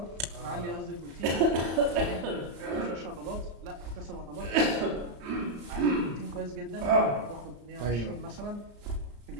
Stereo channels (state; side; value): late; left; 34 ms